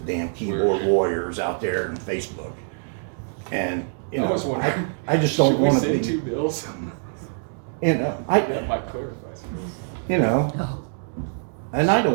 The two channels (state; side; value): silent; left; digital silence